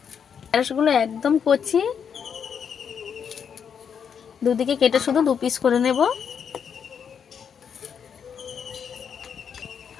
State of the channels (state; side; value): quieter; right; 7.3 dB